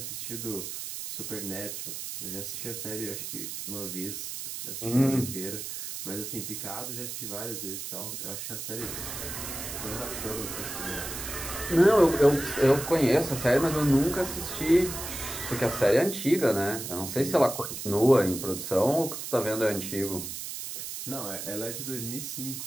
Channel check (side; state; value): right; noise; hiss, 7 dB below the sound